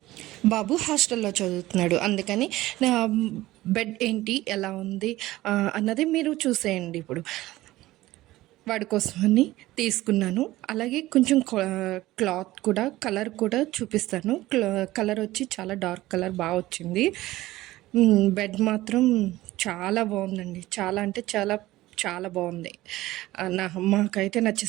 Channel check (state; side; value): quieter; left; 17.0 dB